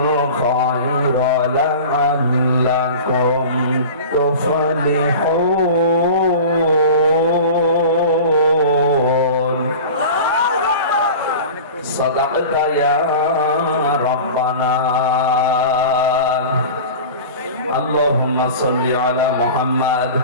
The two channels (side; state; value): both; inverted; correlation -0.35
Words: لعلكم تفلحون صدقت يا ربنا اللهم صل على محمد